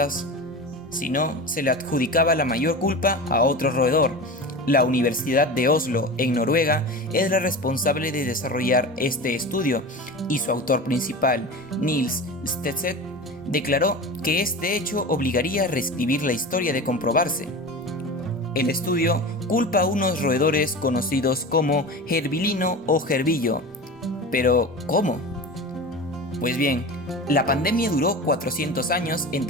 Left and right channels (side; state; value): both; normal; correlation 0.30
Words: sino se le adjudicaba la mayor culpa a otro roedor. La Universidad de Oslo, en Noruega, es la responsable de desarrollar este estudio y su autor principal, Niels Stedset, declaró que este hecho obligaría a reescribir la historia de comprobarse. El estudio culpa a unos roedores conocidos como gerbilino o gerbillo. Pero, ¿cómo? Pues bien, la pandemia duró 400 años